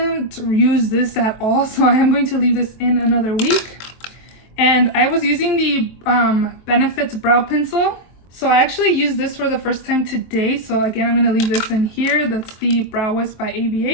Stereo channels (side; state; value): right; late; 23 ms